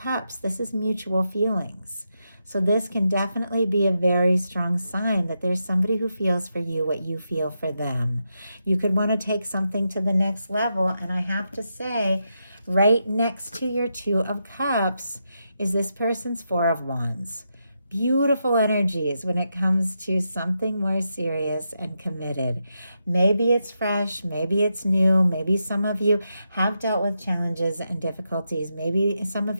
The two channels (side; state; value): both; inverted; correlation -0.85